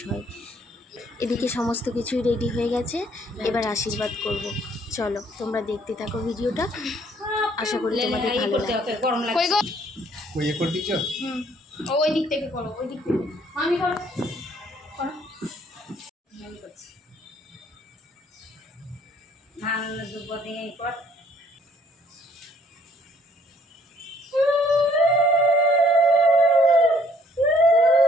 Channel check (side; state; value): both; normal; correlation 0.63